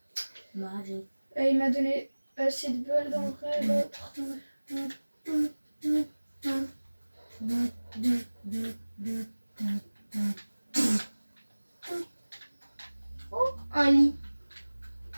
Magique. Il m'a donné assez de balles dans le vrai l'autre. Oh, un lit.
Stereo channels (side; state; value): both; inverted; correlation -1.00